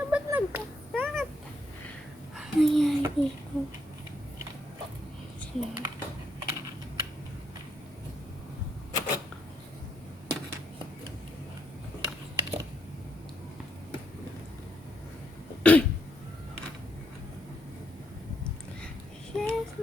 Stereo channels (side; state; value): both; normal; correlation 0.76